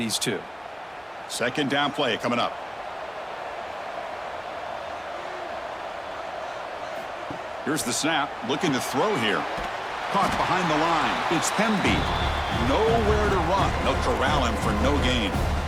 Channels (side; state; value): both; identical; correlation 1.00